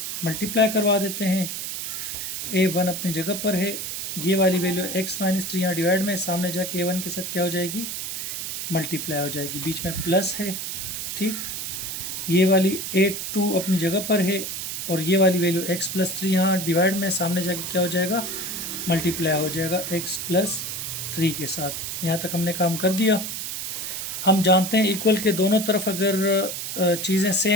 मल्टीप्लाई करवा देते हैं। a1 अपनी जगह पर है, ये वाली वैल्यू x माइनस 3 यहाँ डिवाइड में, सामने जाके a1 के साथ क्या हो जाएगी, मल्टीप्लाई हो जाएगी, बीच में प्लस है। ठीक, ये वाली a2 अपनी जगह पर है, और ये वाली वैल्यू x प्लस 3 यहाँ डिवाइड में, सामने जाके क्या हो जाएगा, मल्टीप्लाई हो जाएगा x प्लस 3 के साथ। यहाँ तक हमने काम कर दिया। हम जानते हैं इक्वल के दोनों तरफ अगर चीज़ें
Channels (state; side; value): noise; right; hiss, 5 dB below the sound